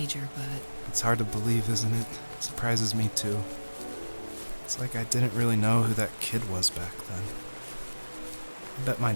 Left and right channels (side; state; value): both; inverted; correlation -1.00